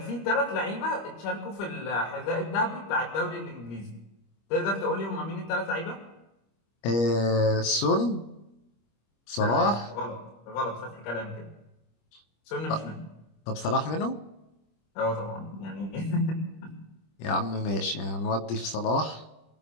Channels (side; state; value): right; late; 25 ms